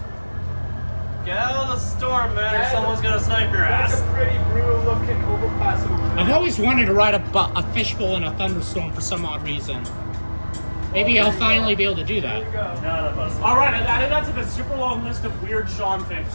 Get out of the storm, man, or someone's gonna snipe your that's ass. a pretty brutal looking overpass over there. I've always wanted to ride a fishbowl in a thunderstorm for some odd reason. Maybe I'll finally be able to do that. None of us. All right, I think that's like a super long list of weird Sean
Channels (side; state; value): both; inverted; correlation -1.00